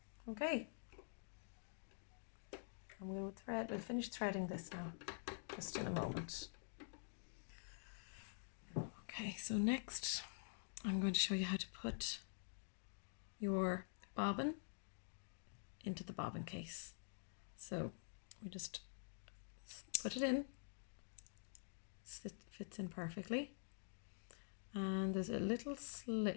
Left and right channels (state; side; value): silent; right; digital silence